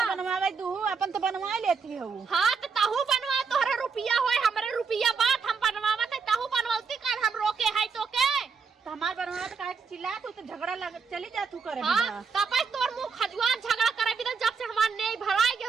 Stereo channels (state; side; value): quieter; left; 5.4 dB